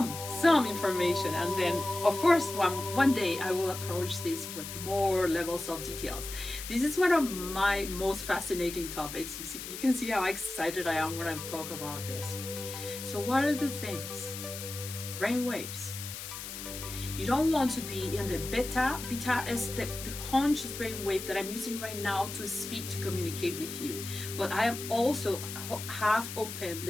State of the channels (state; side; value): noise; left; hiss, 9 dB below the sound